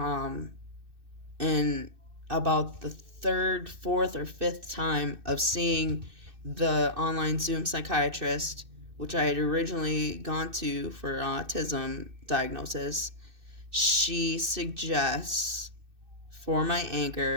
and about the third, fourth, or fifth time of seeing the online Zoom psychiatrist, which I had originally gone to for autism diagnosis, she suggests, for my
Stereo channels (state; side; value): late; left; 2.6 ms